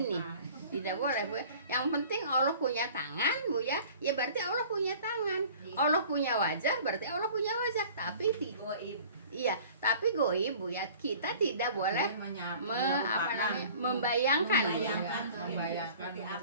Tidak boleh Bu. Yang penting Allah punya tangan Bu ya. Ya berarti Allah punya tangan. Allah punya wajah, berarti Allah punya wajah. Tapi Goib. iya, tapi goib Bu ya, kita tidak boleh membayangkan. Seperti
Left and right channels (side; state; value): both; inverted; correlation -0.47